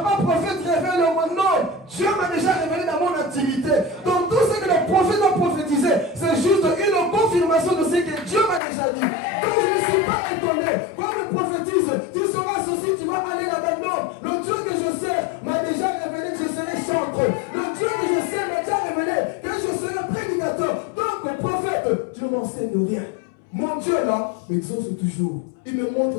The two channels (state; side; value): drops out; right; at 8.6 s